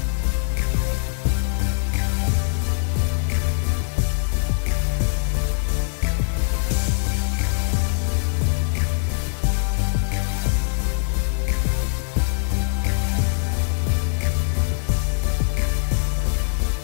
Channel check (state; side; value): silent; right; 60 dB below the other